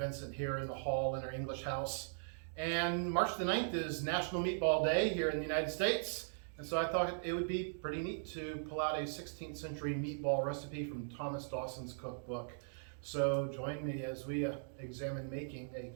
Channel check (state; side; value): silent; left; digital silence